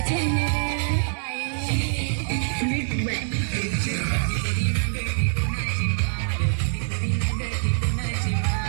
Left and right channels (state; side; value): silent; left; digital silence